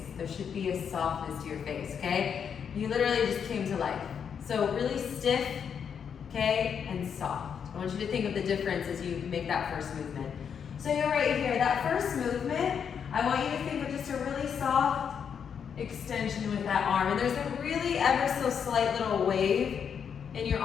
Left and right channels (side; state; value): right; quieter; 7.3 dB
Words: There should be a softness to your face, okay? You literally just came to life. So really stiff, okay, and soft. I want you to think of the difference as you make that first movement. So you're right here, that first movement, I want you to think of just a really soft extension with that arm. And there's a really ever so slight little wave in your